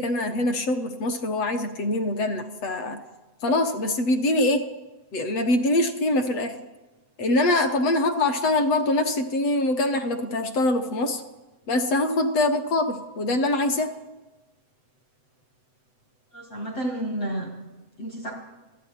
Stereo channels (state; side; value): late; right; 7.9 ms